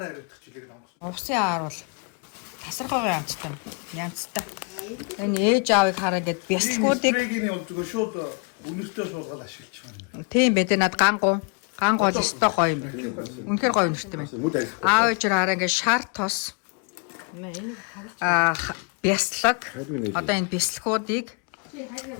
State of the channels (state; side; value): quieter; right; 35.2 dB